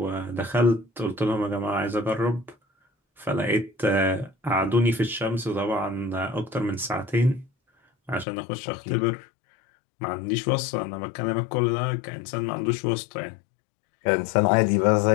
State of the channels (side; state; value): right; drops out; at 8.2 s